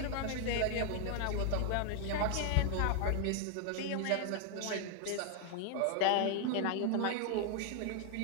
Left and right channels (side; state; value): both; different; correlation 0.00